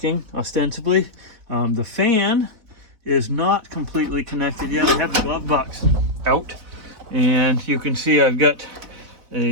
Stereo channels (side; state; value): left; late; 4.0 ms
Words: ostensibly. The fan is not completely connected yet. I have the glove box out, and you can see I've got